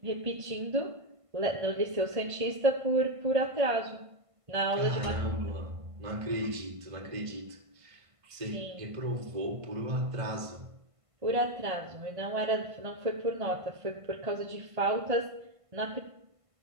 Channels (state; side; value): late; left; 1.5 ms